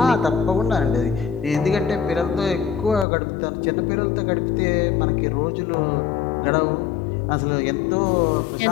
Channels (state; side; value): drops out; right; at 3.1 s